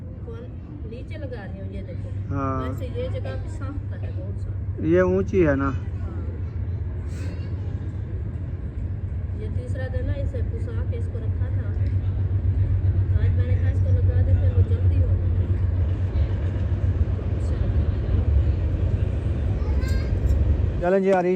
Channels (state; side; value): identical; both; correlation 1.00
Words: कौन? नीचे लगा रही हूँ, ये देखो। हाँ वैसे ये जगह भी साफ है बहुत साफ। ये ऊंची है ना। ये तीसरा दिन है, इसे पुसा के इसको रखा था। आज मैंने कहा इसको लगा दे, फिर वो जल्दी हो गई। चलें जी,